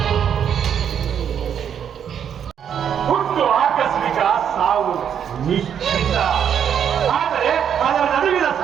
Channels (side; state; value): left; quieter; 8.5 dB